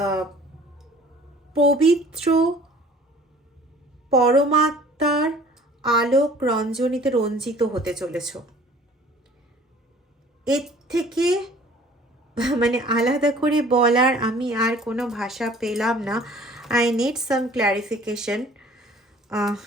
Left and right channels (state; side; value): normal; both; correlation 0.51